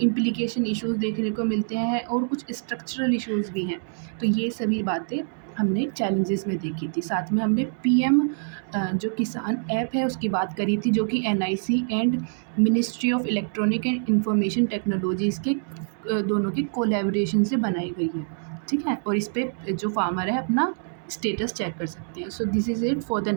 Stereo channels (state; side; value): silent; left; digital silence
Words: इम्प्लीकेशन इश्यूज़ देखने को मिलते हैं और कुछ स्ट्रक्चरल इश्यूज़ भी हैं। तो ये सभी बातें हमने चैलेंजेस में देखी थी। साथ में हमने पीएम जो किसान ऐप है उसकी बात करी थी जो कि NIC and ministry of electronic and information technologies के दोनों की कोलैबोरेशन से बनाई गई है, ठीक है। और इस पे जो फार्मर है अपना स्टेटस चेक कर सकते हैं। So this is it for the